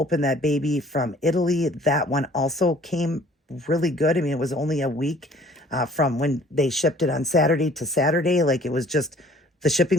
that baby from Italy, that one also came really good. I mean, it was only a week from when they shipped it on Saturday to Saturday. Like it was just, the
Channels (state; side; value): normal; both; correlation 0.54